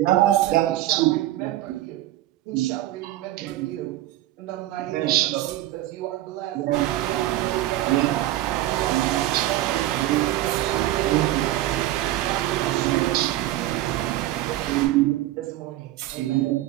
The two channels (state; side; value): quieter; left; 14.9 dB